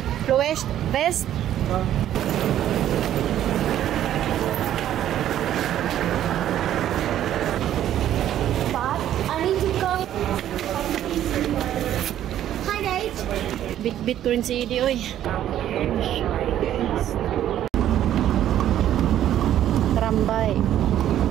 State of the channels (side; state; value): left; quieter; 11.6 dB